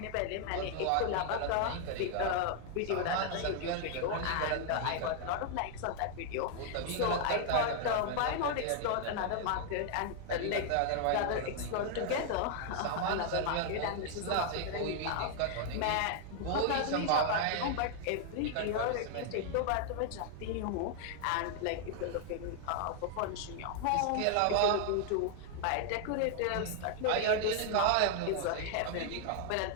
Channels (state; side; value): different; both; correlation 0.00